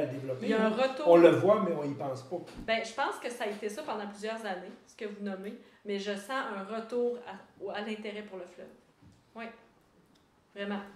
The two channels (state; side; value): identical; both; correlation 1.00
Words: le développer? Il y a un retour. On le voit, mais on y pense pas. Ben, je pense que ça a été ça pendant plusieurs années, ce que vous nommez, mais je sens un retour à l'intérêt pour le fleuve. Oui, vraiment.